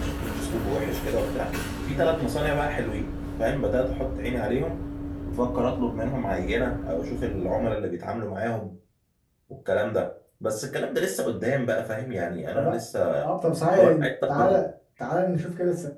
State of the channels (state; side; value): identical; both; correlation 1.00